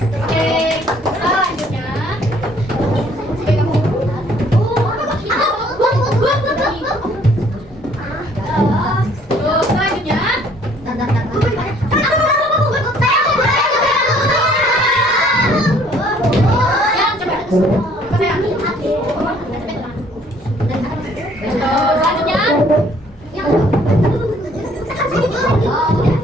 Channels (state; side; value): normal; both; correlation 0.60